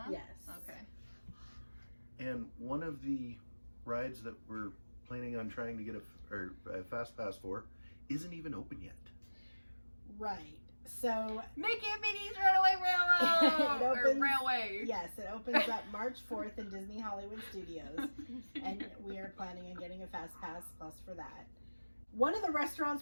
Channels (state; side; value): inverted; both; correlation -1.00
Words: Yes. Okay. And one of the rides that we're planning on trying to get a Fast Pass for isn't even open yet. Right. So Mickey and Minnie's Runaway Railroad! It opens- or Railway. yes, it opens up March 4th in Disney Hollywood Studios, and we are planning on getting a Fast Pass Plus for that. One of the